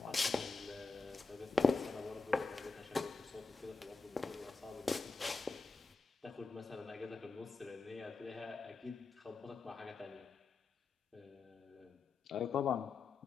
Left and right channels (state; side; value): quieter; right; 4.1 dB